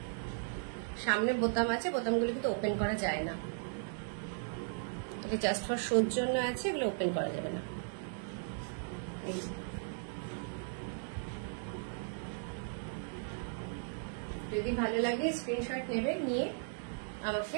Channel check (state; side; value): silent; left; digital silence